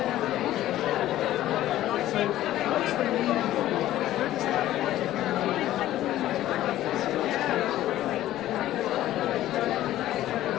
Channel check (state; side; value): quieter; right; 14.0 dB